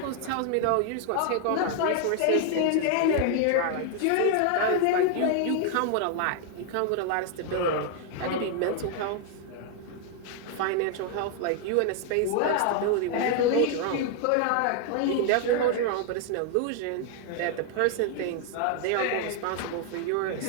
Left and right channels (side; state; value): both; different; correlation 0.00